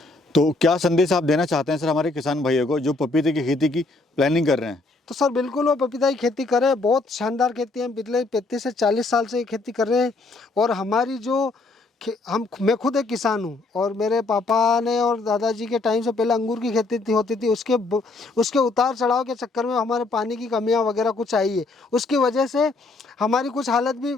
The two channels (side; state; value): right; quieter; 3.4 dB